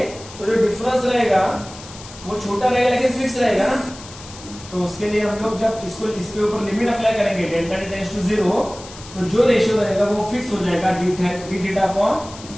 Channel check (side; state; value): left; noise; hiss, 17 dB below the sound